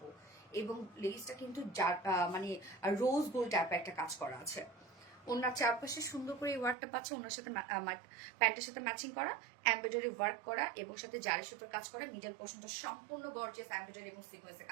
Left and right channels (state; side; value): drops out; left; at 6.8 s